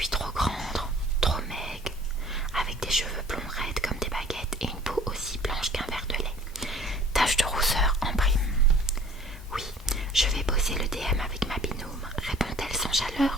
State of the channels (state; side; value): normal; both; correlation 0.51